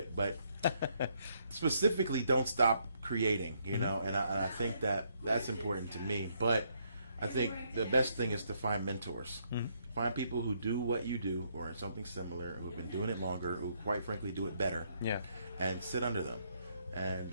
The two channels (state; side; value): inverted; both; correlation -0.73